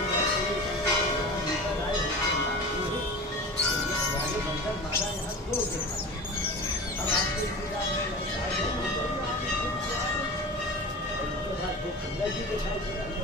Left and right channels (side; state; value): both; normal; correlation 0.33